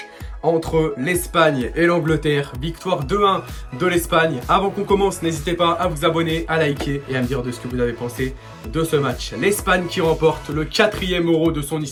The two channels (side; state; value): both; identical; correlation 1.00